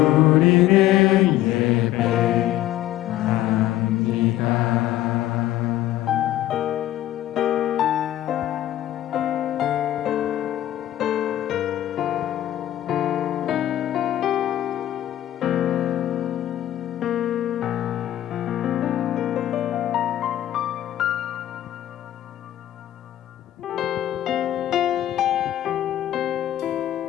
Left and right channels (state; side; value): quieter; right; 13.3 dB